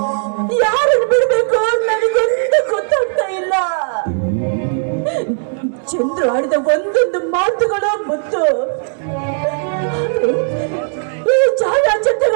ಯಾರನ್ನು ಬಿಡಬೇಕು ನನಗೊಂದು ಗೊತ್ತಾಗ್ತಾ ಇಲ್ಲ. ಚಂದ್ರು ಆಡಿದ ಒಂದೊಂದು ಮಾತುಗಳು ಮುತ್ತು, ಈ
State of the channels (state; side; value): silent; left; 68 dB below the other